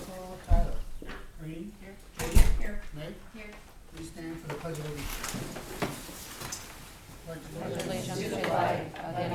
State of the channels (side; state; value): both; identical; correlation 1.00